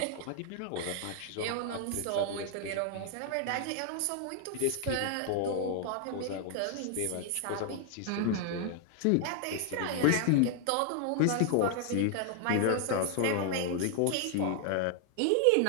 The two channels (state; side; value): different; both; correlation 0.00